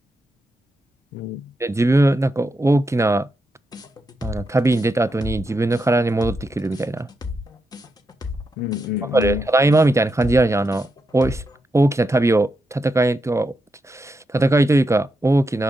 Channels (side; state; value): both; normal; correlation 0.84